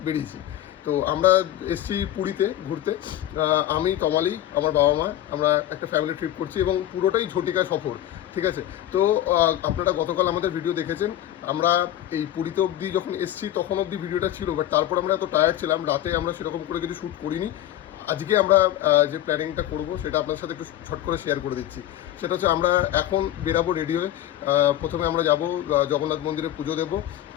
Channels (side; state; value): right; quieter; 12.6 dB